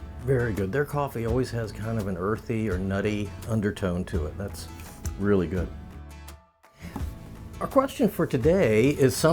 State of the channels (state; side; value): identical; both; correlation 1.00